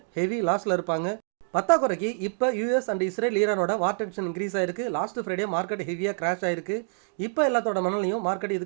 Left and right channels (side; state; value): left; silent; 60 dB below the other